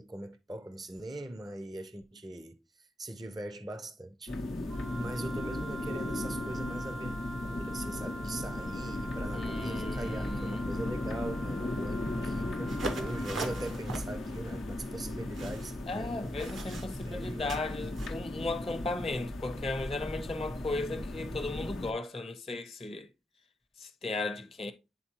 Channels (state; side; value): normal; both; correlation 0.84